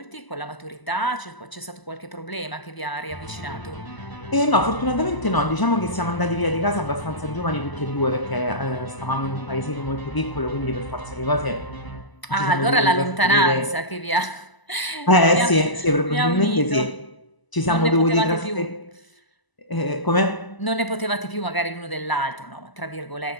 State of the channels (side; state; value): right; late; 1.0 ms